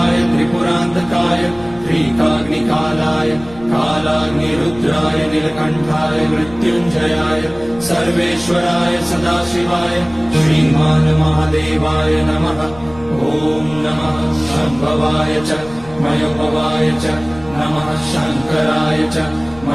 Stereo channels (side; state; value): left; noise; rumble, 19 dB below the sound